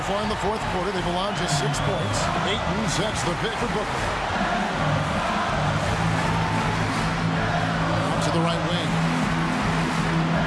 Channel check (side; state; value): both; identical; correlation 1.00